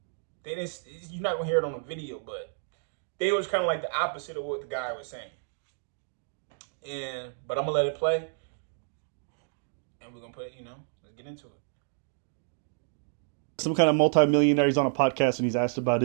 They didn't. You're not gonna hear it on the video, but they was kind of like the opposite of what the guy was saying. But I'm gonna let it play, and we're gonna put it. Let's get into it. Some kind of multi-millionaire. He's on a podcast and he's asked about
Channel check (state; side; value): silent; left; digital silence